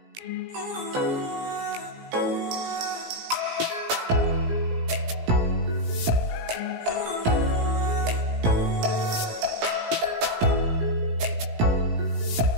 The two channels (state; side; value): late; left; 17 ms